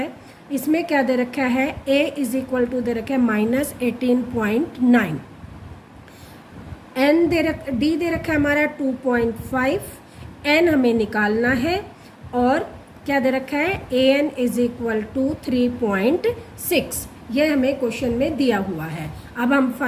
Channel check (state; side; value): identical; both; correlation 1.00